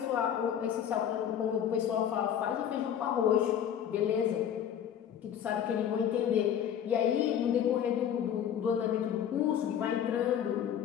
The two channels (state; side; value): quieter; right; 9.3 dB